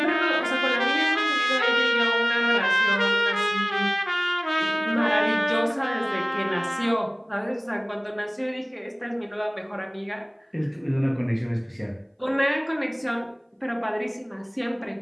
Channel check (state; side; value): identical; both; correlation 1.00